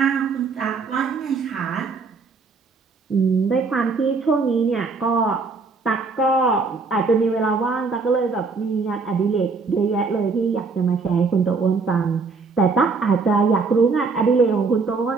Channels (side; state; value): left; quieter; 4.4 dB